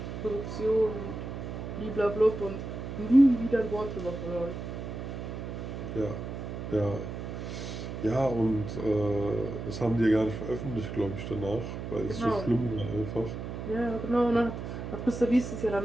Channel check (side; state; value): right; noise; hum, 7 dB below the sound